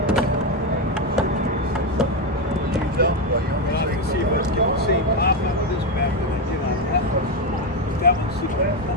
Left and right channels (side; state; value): both; normal; correlation 0.09